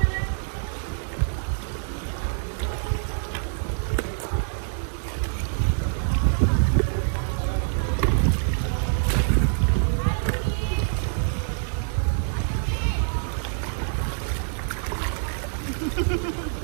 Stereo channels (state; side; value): silent; left; digital silence